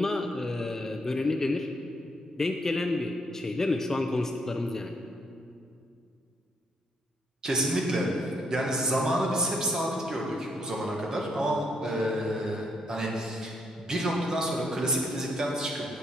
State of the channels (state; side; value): normal; both; correlation 0.74